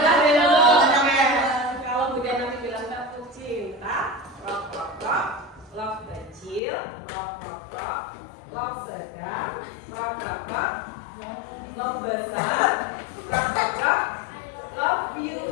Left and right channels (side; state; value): right; drops out; at 6.6 s